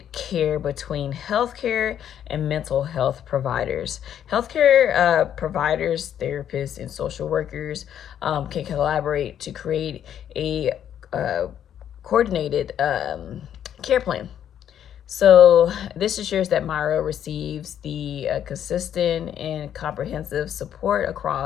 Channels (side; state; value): right; quieter; 9.8 dB